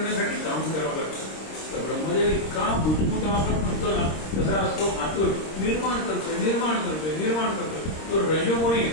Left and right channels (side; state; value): right; late; 26 ms